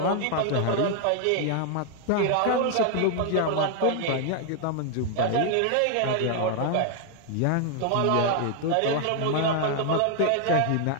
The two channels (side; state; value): both; different; correlation 0.00